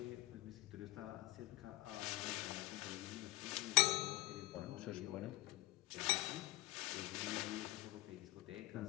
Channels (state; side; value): quieter; right; 19.7 dB